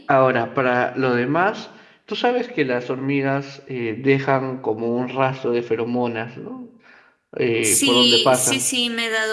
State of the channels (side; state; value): both; identical; correlation 1.00